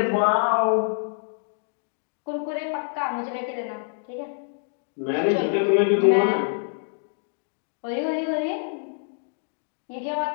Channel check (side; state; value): right; silent; digital silence